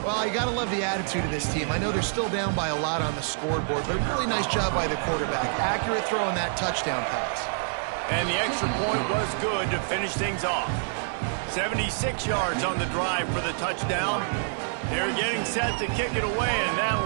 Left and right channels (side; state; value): left; silent; 60 dB below the other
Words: you got to love the attitude of this team. I know they're still down by a lot on the scoreboard, but a really nice job by the quarterback. Accurate throw on that touchdown pass. And the extra point was good to finish things off. 76 yards on the drive for the touchdown. They're getting set to kick it away, and